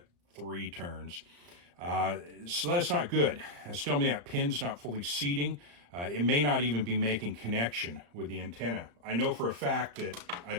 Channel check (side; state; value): left; late; 35 ms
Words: 3 turns. So that's not good. That's telling me that pin's not fully seating. It may not even be making connection with the antenna. I know for a fact that I